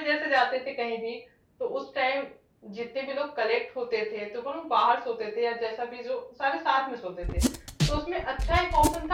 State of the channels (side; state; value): both; identical; correlation 1.00